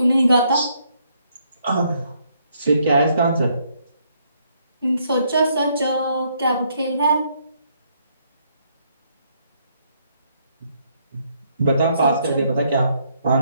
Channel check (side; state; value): both; inverted; correlation -0.71